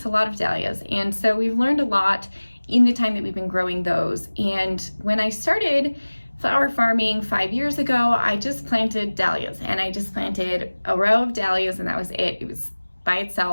a lot of dahlias, and so we've learned a lot in the time that we've been growing those. And when I started flower farming 5 years ago, I just planted dahlias, and I just planted a row of dahlias, and that was it. It was by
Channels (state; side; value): inverted; both; correlation -1.00